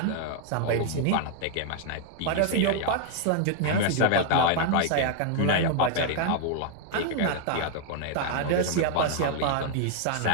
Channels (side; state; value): both; different; correlation 0.00